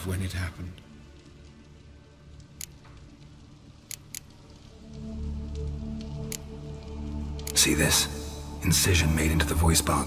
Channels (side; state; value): both; identical; correlation 1.00